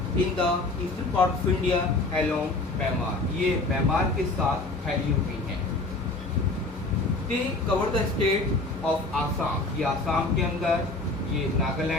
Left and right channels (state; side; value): quieter; right; 3.1 dB